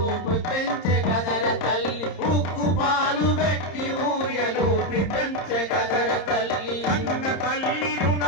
పెంచే కదర తల్లి. ఉక్కు పాలు పెట్టి ఊయలూపి పెంచే కదర తల్లి. అన్న తల్లి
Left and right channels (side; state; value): right; late; 30 ms